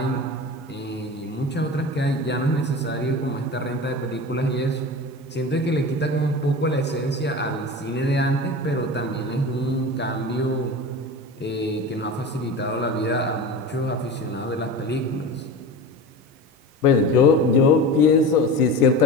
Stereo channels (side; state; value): both; normal; correlation 0.30